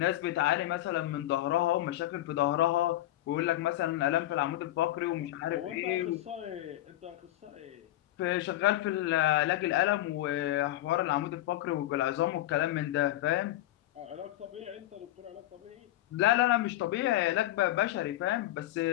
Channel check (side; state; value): right; quieter; 15.1 dB